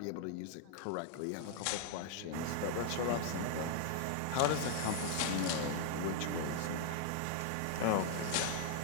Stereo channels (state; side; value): different; both; correlation 0.00